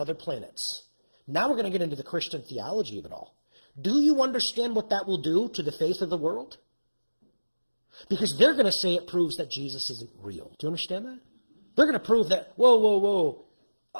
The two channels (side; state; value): both; inverted; correlation -1.00